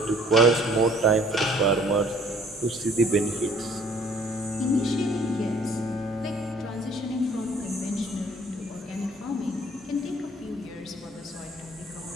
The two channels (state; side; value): normal; both; correlation 0.57